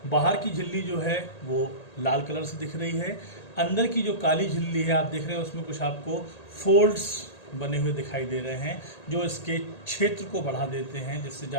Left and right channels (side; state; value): right; late; 1.8 ms